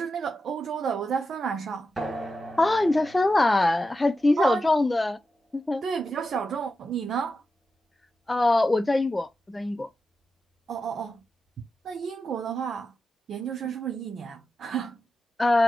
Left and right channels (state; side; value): normal; both; correlation 0.90